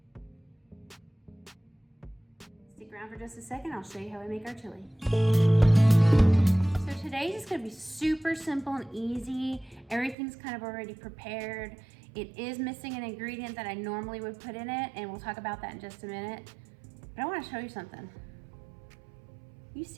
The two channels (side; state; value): left; drops out; at 10.2 s